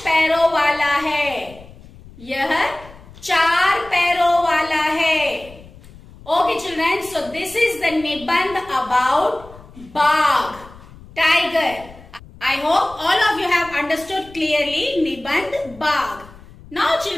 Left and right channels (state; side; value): noise; left; rumble, 21 dB below the sound